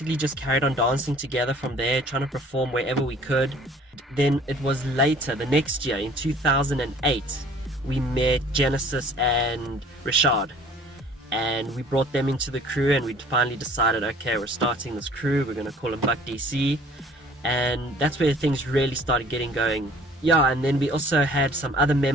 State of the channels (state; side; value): normal; both; correlation 0.52